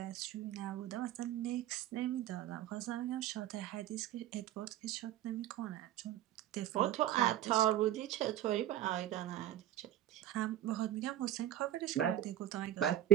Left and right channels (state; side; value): quieter; left; 12.5 dB